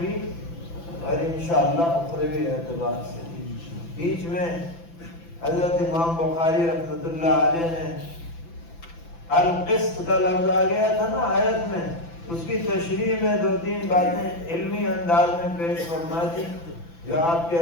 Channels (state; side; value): late; right; 5.9 ms